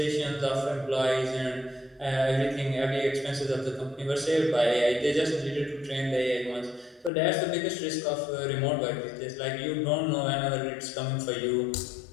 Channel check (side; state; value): right; drops out; at 7.1 s